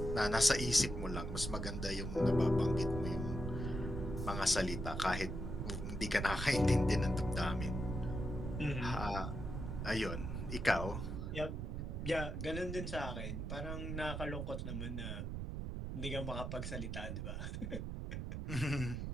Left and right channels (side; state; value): right; noise; rumble, 4 dB below the sound